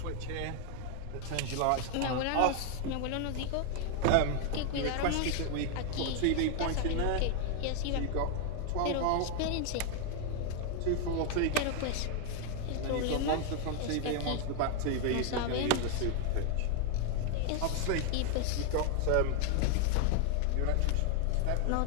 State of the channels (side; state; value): both; different; correlation 0.00